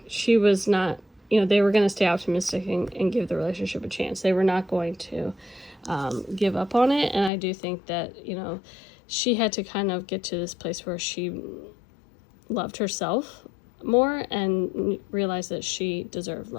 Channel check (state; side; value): drops out; right; at 7.3 s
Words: she was not, they were going to stay optimistic and give the relationship a chance. They were not going to give up on it. And I do think that, she had to kind of get to this place where she loved herself more and realized that she deserved